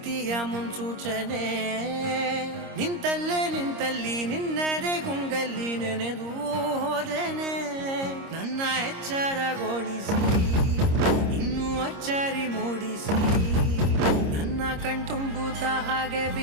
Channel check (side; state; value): left; late; 26 ms